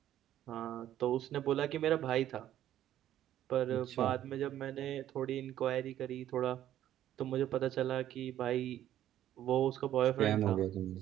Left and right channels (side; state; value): left; quieter; 12.1 dB